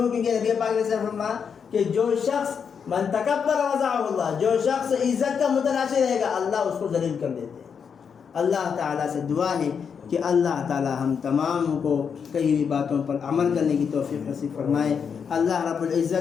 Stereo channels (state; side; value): quieter; right; 6.7 dB